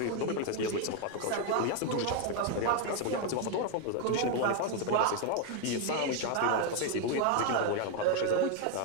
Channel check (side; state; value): both; different; correlation 0.01